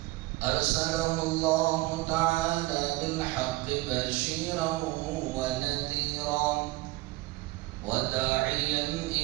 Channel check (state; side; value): quieter; left; 20.4 dB